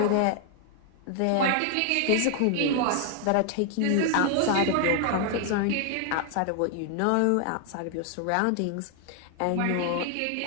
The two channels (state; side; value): different; both; correlation 0.00